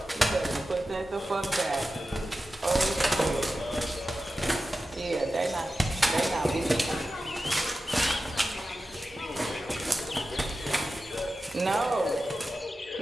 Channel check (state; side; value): normal; both; correlation 0.93